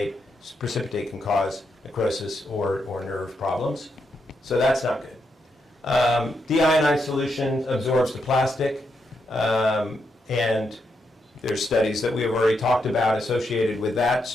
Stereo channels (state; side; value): normal; both; correlation 0.81